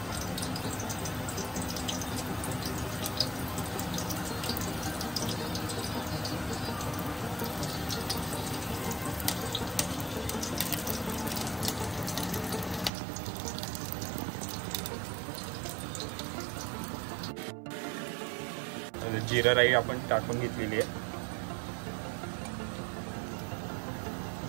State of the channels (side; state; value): left; drops out; at 12.9 s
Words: जिरा राई आपण टाकून घेतलेली आहे.